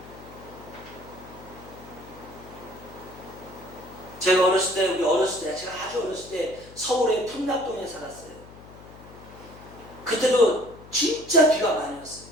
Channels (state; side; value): noise; left; hum, 19 dB below the sound